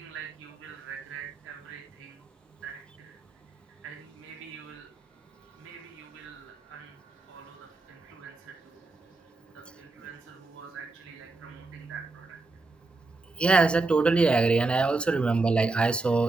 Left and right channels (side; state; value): left; quieter; 3.4 dB